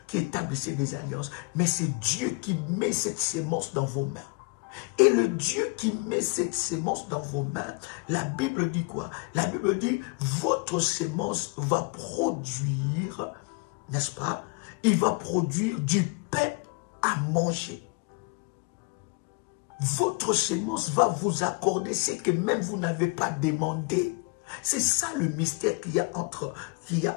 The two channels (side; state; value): right; quieter; 30.7 dB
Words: qui établissez des alliances, mais c'est Dieu qui met cette semence dans vos mains. Et le Dieu qui met cette semence dans vos mains, la Bible dit quoi? La Bible dit, votre semence va produire, n'est-ce pas? Il va produire du pain à manger. Votre semence va vous accorder ce que même vous n'avez pas demandé. C'est ça le mystère qu'il y a